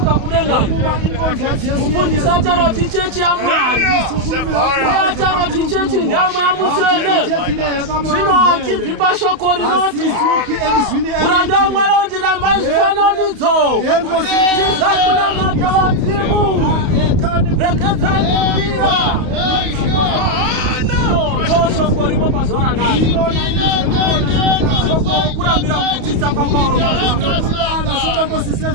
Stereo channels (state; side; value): late; left; 32 ms